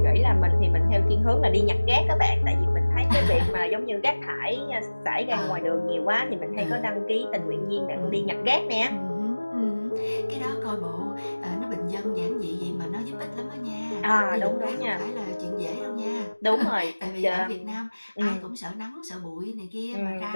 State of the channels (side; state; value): both; inverted; correlation -1.00